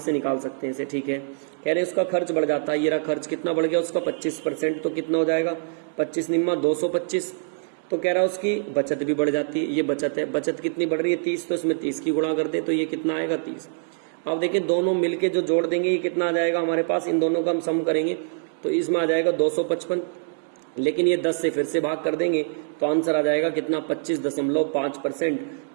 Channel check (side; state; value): left; silent; digital silence